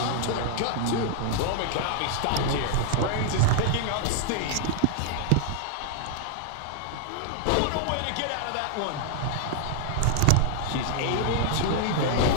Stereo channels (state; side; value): different; both; correlation 0.00